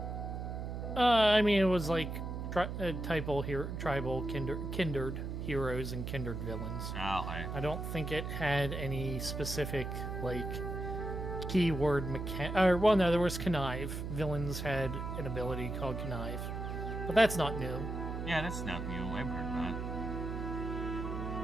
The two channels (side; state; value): right; noise; hum, 5 dB below the sound